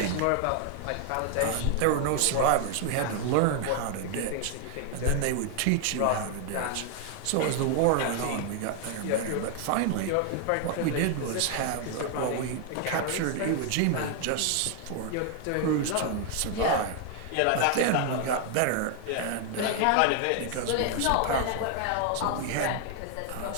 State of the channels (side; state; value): both; different; correlation 0.00